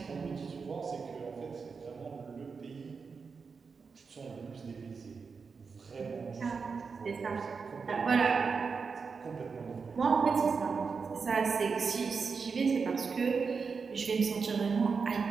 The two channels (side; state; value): left; quieter; 5.2 dB